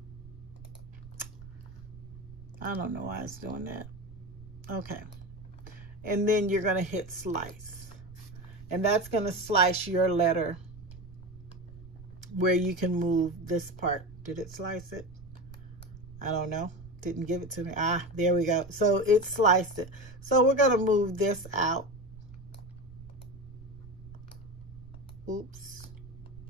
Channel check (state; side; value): noise; right; rumble, 17 dB below the sound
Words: don't know why it's doing that. Okay. And then you're going to hit slice. And that's going to slice your letter where you can move this part. Did it slice it? I don't know. Didn't give it to me. Ah, there we go. So it sliced it. So we're going to move this out. Oops.